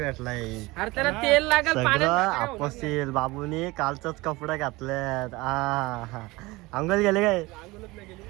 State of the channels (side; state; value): left; quieter; 21.8 dB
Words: सगळं आपसील बाबूनी कालचंच कपडे घातलेत अंगल गेले काय